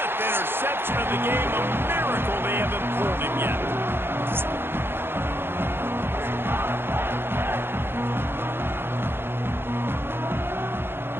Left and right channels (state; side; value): late; left; 0.11 ms